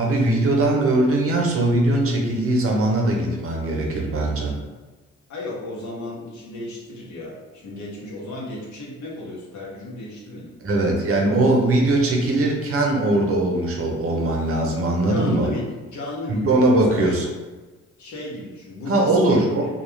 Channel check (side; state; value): both; normal; correlation 0.50